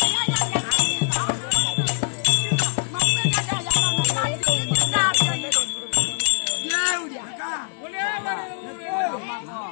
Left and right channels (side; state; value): right; silent; digital silence